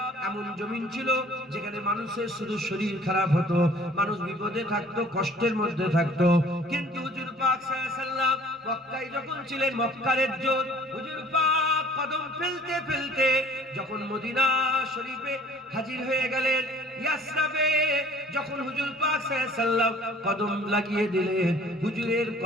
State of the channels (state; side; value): normal; both; correlation 0.53